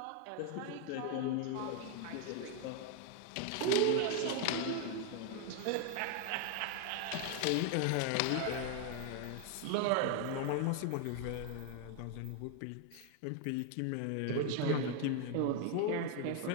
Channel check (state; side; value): different; both; correlation 0.01